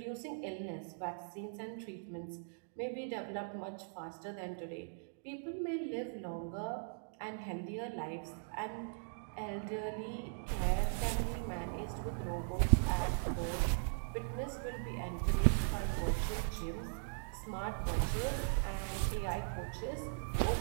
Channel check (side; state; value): left; silent; digital silence